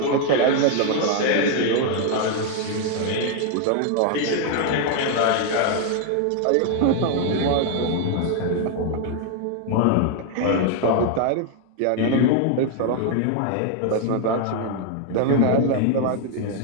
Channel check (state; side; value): different; both; correlation 0.00